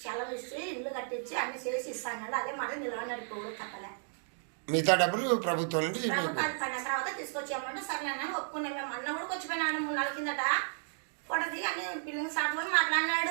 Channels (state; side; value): silent; left; digital silence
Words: సెలవు ఇచ్చి ఇల్లు కట్టించి అన్ని చేసి ఇస్తాడు. అదే మాట నిలబడినాడు. ఇప్పుడు కట్టలే. మిగతా డబ్బులు ప్రభుత్వం నుండి ప్రభుత్వాలు పడిన తర్వాత తీసుకొచ్చామంటే సరే అన్న ఒప్పుకునే. మేము అన్న కూడా వచ్చిపోయినాడు 3 నెలల కిందట. ఫోటో దిగి అన్ని పిల్లలు సార్లు